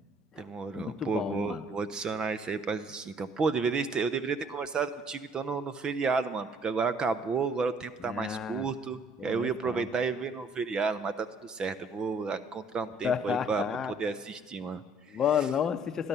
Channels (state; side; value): normal; both; correlation 0.60